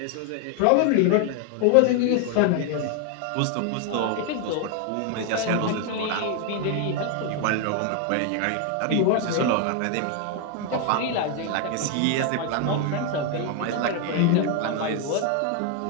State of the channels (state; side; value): different; both; correlation 0.01